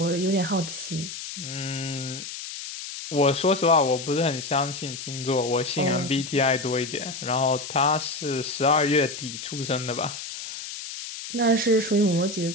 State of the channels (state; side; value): noise; left; hiss, 9 dB below the sound